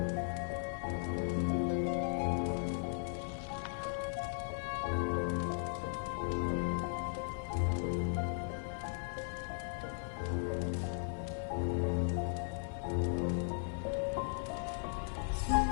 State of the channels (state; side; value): silent; right; 53 dB below the other